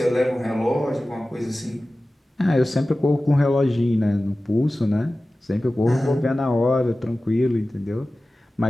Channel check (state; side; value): normal; both; correlation 0.96